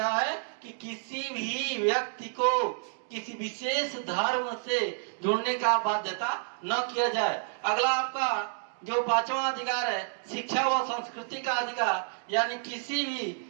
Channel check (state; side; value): silent; left; digital silence